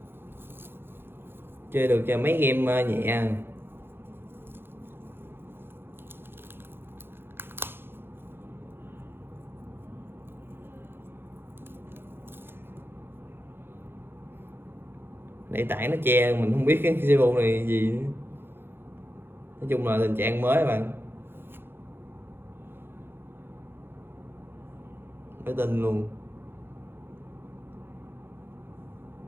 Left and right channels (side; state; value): left; late; 0.10 ms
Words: chơi được cho mấy game nhẹ. Để tảng nó che mình không biết cái Cebu này gì nữa. Nói chung là tình trạng mới các bạn, mới tin luôn.